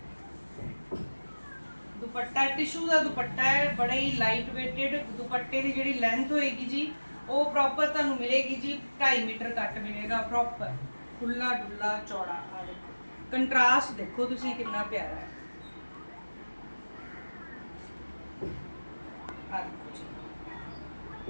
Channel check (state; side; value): inverted; both; correlation -1.00